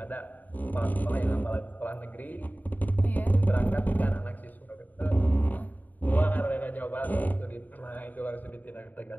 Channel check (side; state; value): right; late; 0.083 ms